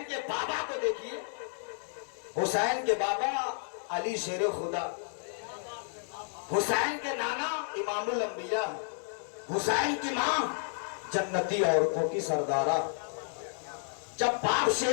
के बाबा को देखिए। हुसैन के बाबा अली शेर खुदा, हुसैन के नाना इमामुल अंबिया, हुसैन की मां जन्नती औरतों की सरदारा। जब बाप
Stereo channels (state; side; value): silent; right; digital silence